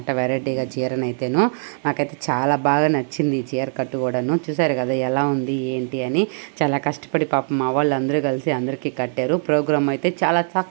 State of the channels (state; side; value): silent; left; digital silence